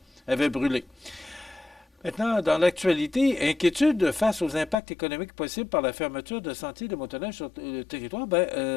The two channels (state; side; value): drops out; right; at 4.8 s